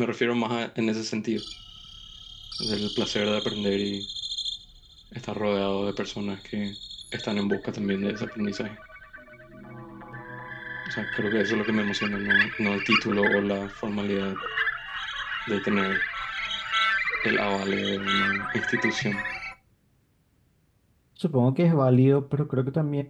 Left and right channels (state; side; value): identical; both; correlation 1.00